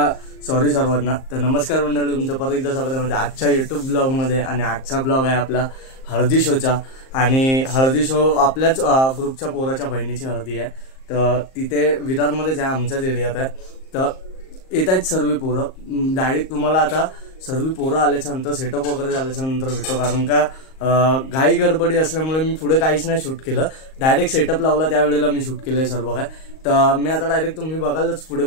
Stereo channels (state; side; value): late; right; 38 ms